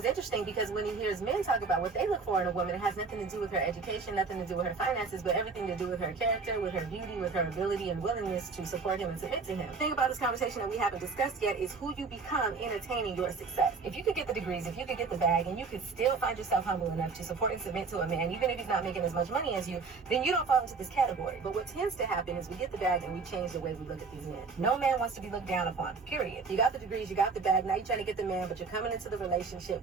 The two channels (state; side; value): quieter; left; 4.6 dB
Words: interesting because when he hears men talk about what they look for in a woman, it has nothing to do with her education, nothing to do with her finances, but everything to do with her character, with her beauty, with her ability and willingness to support him and submit to him. The thing about this conversation that we haven't discussed yet is who you become in attaining your success. If you could get the degrees, if you could get the bag, and you could still find yourself humble enough to support and submit to a man, even if he's not making as much money as you, then you don't fall into this category. But what tends to happen is we get the bag and we change the way we look at these men. No man wants to be looked down upon, period. You got the degrees, you got the bag, now you're trying to get the man, but you're coming into the